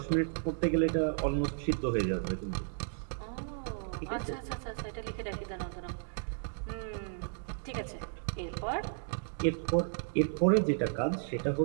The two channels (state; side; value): silent; left; digital silence